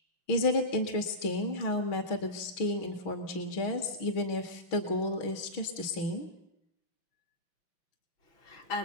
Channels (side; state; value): right; late; 6.3 ms